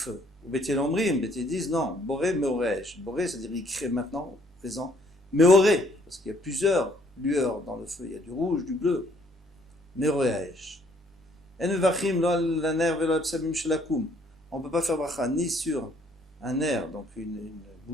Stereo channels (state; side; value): normal; both; correlation 0.64